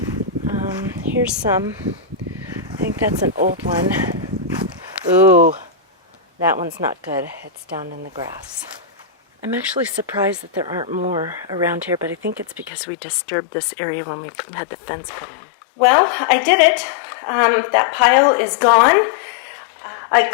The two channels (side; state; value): right; drops out; at 12.7 s